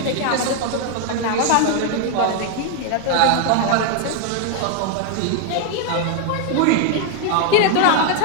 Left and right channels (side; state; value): both; different; correlation 0.01